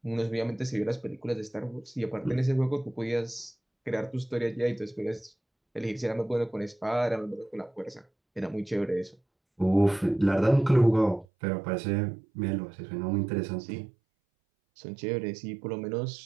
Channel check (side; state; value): left; drops out; at 11.2 s